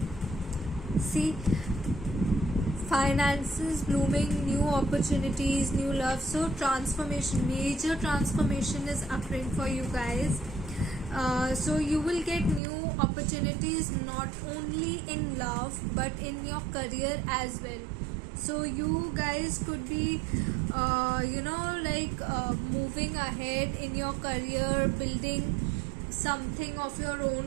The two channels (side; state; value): left; drops out; at 12.6 s